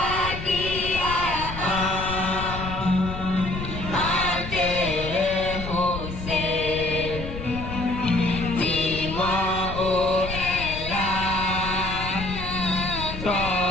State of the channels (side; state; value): left; noise; rumble, 8 dB below the sound